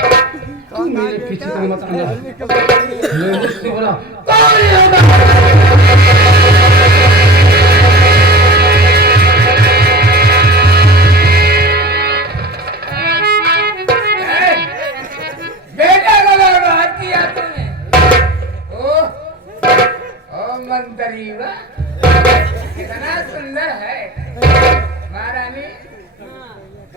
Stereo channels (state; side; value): normal; both; correlation 0.34